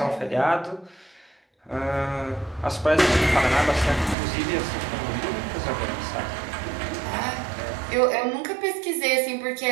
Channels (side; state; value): left; drops out; at 4.2 s